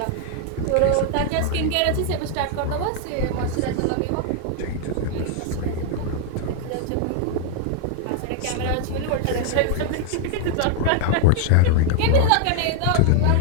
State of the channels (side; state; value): both; different; correlation 0.00